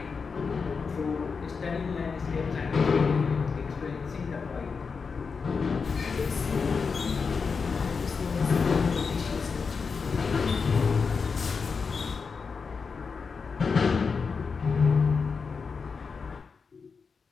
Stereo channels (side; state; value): right; quieter; 5.2 dB